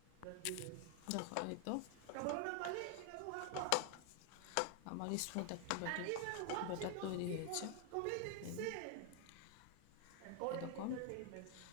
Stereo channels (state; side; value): different; both; correlation 0.01